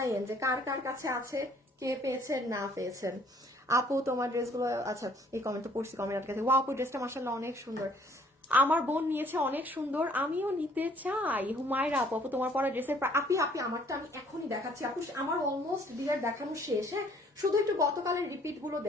যে কার কার কাছে আছে, কে পেয়েছেন না পেয়েছেন। আপু তোমার ড্রেসগুলো, আচ্ছা এই কমেন্টটা পড়ছি, কমেন্ট আটকে ওয়া আপু ড্রেসটা মাশাআল্লাহ অনেক সুন্দর, আমার বোন নিয়েছে অনেক সুন্দর, আমিও নিতে চাই। হুমায়রা আপু, আপু তোমার পরা ড্রেসের আপি আমারটা আমি এখনই দেখাচ্ছি আপু, আমার অলমোস্ট ডিয়ার দেখানো শেষ। হ্যাঁ শুধু একটু গতকালের রিপিট গুলো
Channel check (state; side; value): normal; both; correlation 0.60